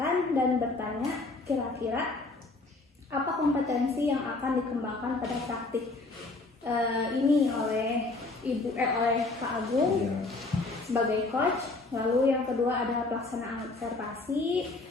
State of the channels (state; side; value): quieter; right; 3.4 dB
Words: dan bertanya kira-kira apa kompetensi yang akan dikembangkan pada praktik ini oleh oleh Pak Agung sebagai coach. Lalu yang kedua adalah pelaksanaan observasi,